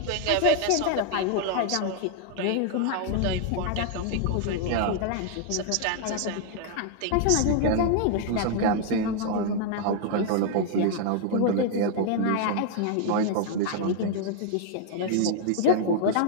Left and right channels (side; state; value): both; different; correlation 0.00